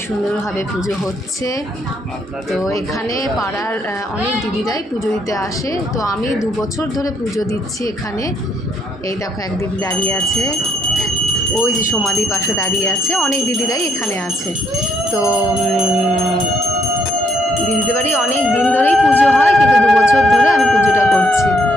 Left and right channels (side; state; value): both; normal; correlation 0.72